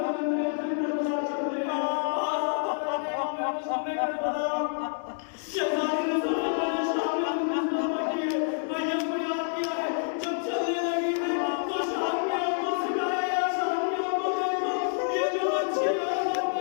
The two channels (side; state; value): right; silent; digital silence